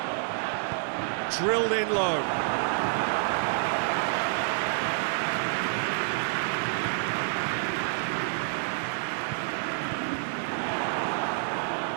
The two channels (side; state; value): left; silent; digital silence